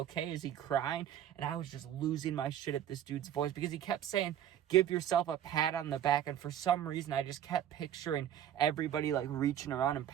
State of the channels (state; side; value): quieter; left; 10.6 dB